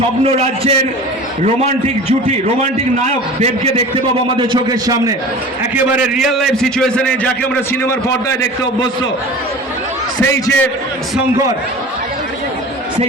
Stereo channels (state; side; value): normal; both; correlation 0.38